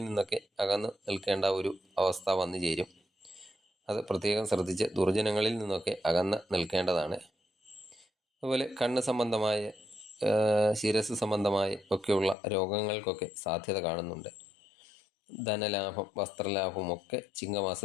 നിന്നൊക്കെ അകന്ന് നിൽക്കേണ്ട ഒരു അവസ്ഥ വന്നു ചേരും. അത് പ്രത്യേകം ശ്രദ്ധിച്ച് ദുർജനങ്ങളിൽ നിന്നൊക്കെ അകന്ന് നിൽക്കേണ്ടതാണ്. അതുപോലെ കണ്ണ് സംബന്ധമായ, ശിരസ് സംബന്ധമായ ഒക്കെയുള്ള രോഗങ്ങൾക്കൊക്കെ സാധ്യത കാണുന്നുണ്ട്. ധനലാഭം, വസ്ത്രലാഭവും ഒക്കെ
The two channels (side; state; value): right; drops out; at 12.4 s